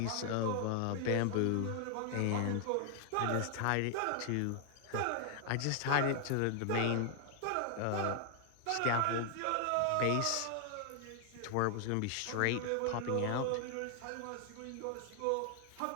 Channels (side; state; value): both; different; correlation 0.00